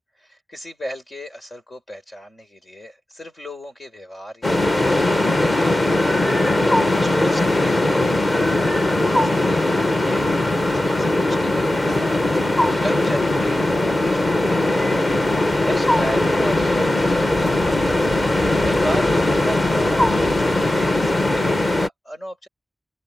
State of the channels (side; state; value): both; normal; correlation 0.94